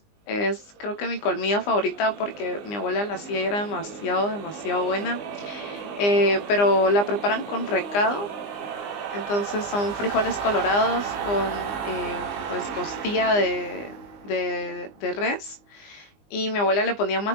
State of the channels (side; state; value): right; late; 20 ms